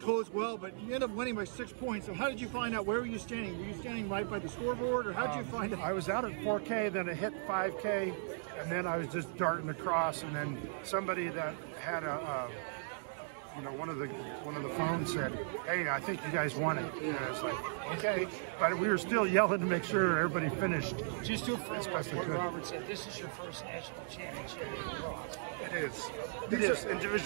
well, but you ended up winning by 6 points. So how did you find out? Where were you standing? Were you standing right by the scoreboard, or how did you find out? I was out at 4K, then it hit 5K, and then I was just darting across, and then somebody that had one of the phones said, hey, I think you guys won it. And I was like, okay. But we were still yelling to make sure everybody finished. Just to follow what Robert said, this is your first national championship in cross. It is. It is in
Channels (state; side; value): silent; left; digital silence